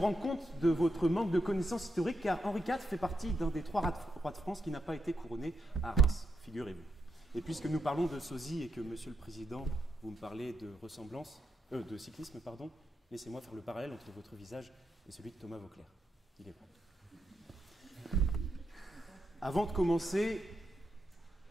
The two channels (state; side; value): normal; both; correlation 0.81